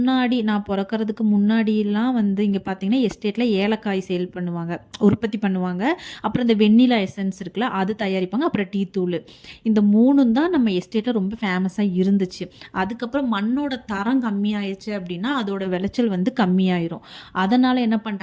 நான் பிறக்கிறதுக்கு முன்னாடியெல்லாம் வந்து இங்கே பார்த்தீங்கன்னா எஸ்டேட்டில் ஏலக்காய் சேல் பண்ணுவாங்க, உற்பத்தி பண்ணுவாங்க. அப்புறம் இந்த வெண்ணிலா எசன்ஸ் இருக்குல்ல, அது தயாரிப்பாங்க. அப்புறம் டீ தூள், இந்த 3ம் தான் நம்ம எஸ்டேட்டில் ரொம்ப ஃபேமஸாக இருந்துச்சு. அதுக்கப்புறம் மண்ணோட தரம் கம்மியாயிடுச்சு அப்படின்னா அதோட விளைச்சல் வந்து கம்மியாயிரும். அதனால் என்ன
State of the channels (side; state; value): both; identical; correlation 1.00